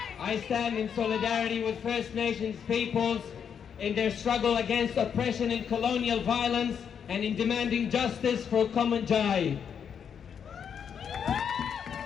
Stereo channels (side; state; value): right; quieter; 7.6 dB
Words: I stand in solidarity with First Nations peoples in their struggle against oppression and colonial violence and in demanding justice for Kumanjai.